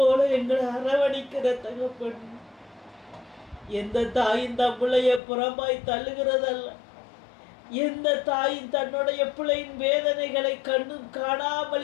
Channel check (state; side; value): drops out; right; at 5.2 s